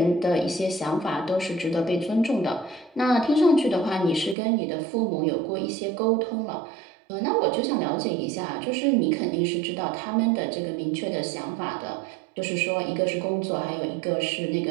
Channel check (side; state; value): left; drops out; at 4.4 s